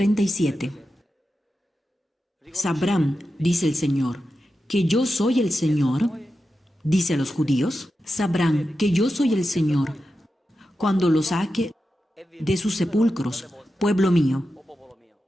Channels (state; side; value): normal; both; correlation 0.90